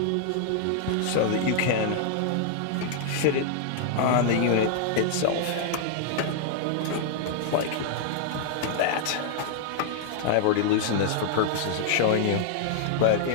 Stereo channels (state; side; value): different; both; correlation -0.01